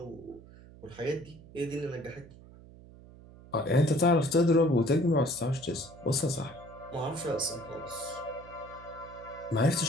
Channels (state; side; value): noise; right; hum, 20 dB below the sound